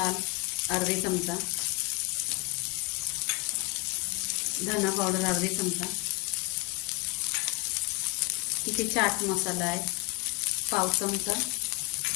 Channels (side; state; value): right; quieter; 24.3 dB